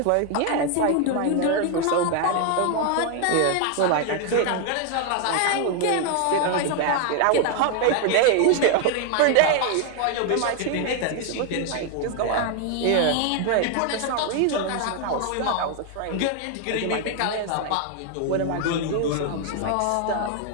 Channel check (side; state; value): both; different; correlation 0.00